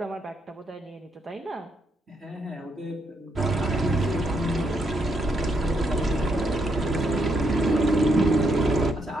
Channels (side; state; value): both; normal; correlation 0.77